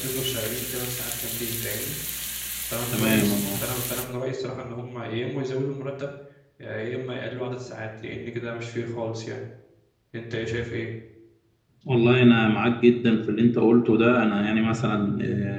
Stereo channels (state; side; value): identical; both; correlation 1.00